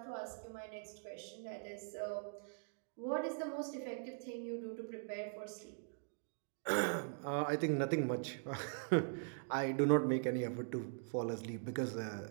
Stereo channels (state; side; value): silent; left; digital silence